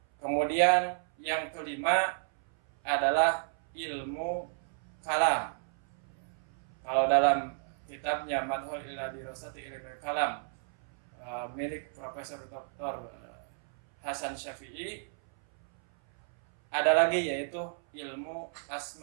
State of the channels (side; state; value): left; silent; 56 dB below the other